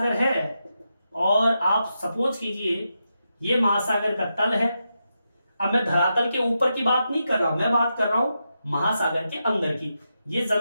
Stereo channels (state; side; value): inverted; both; correlation -0.87